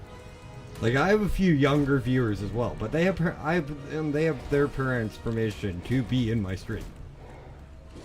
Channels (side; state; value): both; identical; correlation 1.00